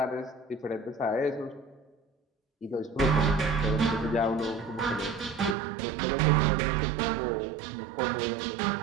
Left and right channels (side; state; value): left; drops out; at 5.6 s